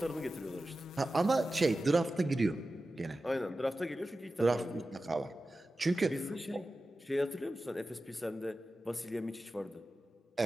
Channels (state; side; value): normal; both; correlation 0.94